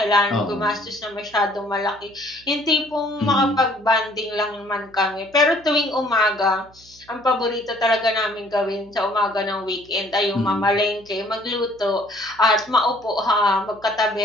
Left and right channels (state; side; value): noise; right; hum, 27 dB below the sound